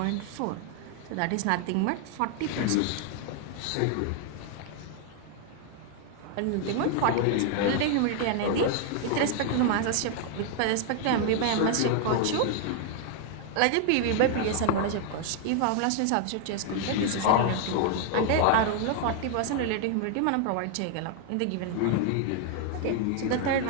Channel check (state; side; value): different; both; correlation 0.00